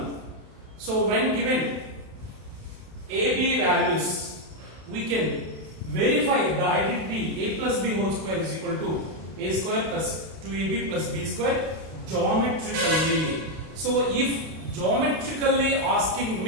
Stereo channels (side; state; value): left; late; 31 ms